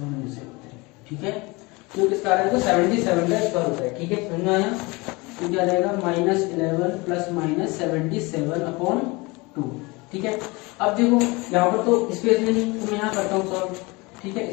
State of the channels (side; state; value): right; quieter; 25.0 dB